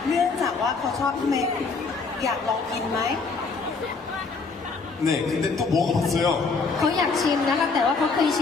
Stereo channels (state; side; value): quieter; right; 4.5 dB